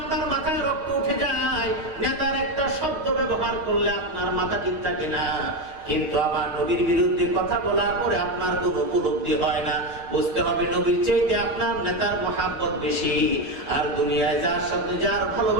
মাথায় রক্ত উঠে যায়, নেতার একটা শব্দ ব্যবহার করলে আপনার মাথা ঠিক থাকে না। কিন্তু আমার নবীর বিরুদ্ধে কথা বলার পরে আপনার কোনো উপলব্ধি হয় না। বুঝতে হবে নবীর চাইতে আপনার নেতার মহাব্বত বেশি। আর দুনিয়ায় যার সাথে যার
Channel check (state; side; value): late; left; 6.3 ms